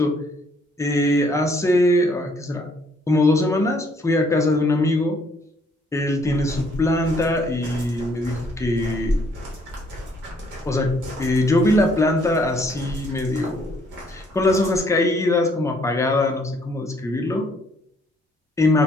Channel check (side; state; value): both; normal; correlation 0.66